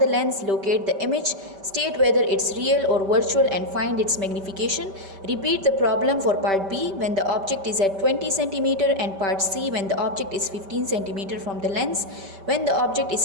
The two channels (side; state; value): left; late; 5.1 ms